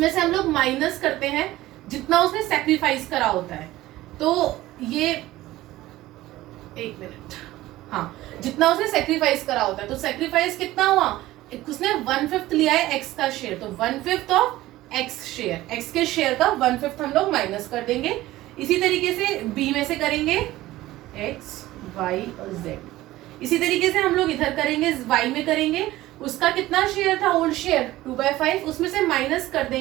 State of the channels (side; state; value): left; quieter; 16.5 dB